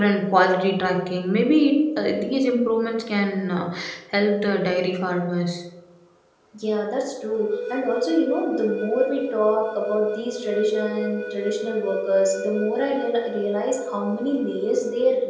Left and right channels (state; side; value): identical; both; correlation 1.00